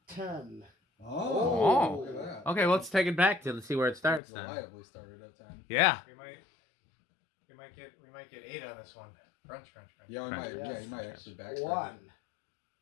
10. Oh, look at that. Okay, well, let's take it back to see where it starts then. Reliably started at 10. Yeah. We might get 8 on this one. Crunch. Yeah, we Crunch. might. Yeah, Yes. you might actually backtrack. 1,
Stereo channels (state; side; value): drops out; right; at 4.2 s